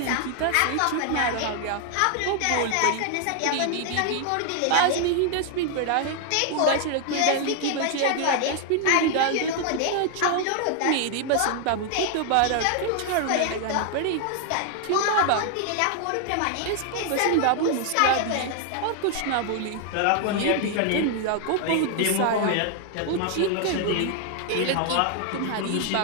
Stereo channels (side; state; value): both; different; correlation 0.00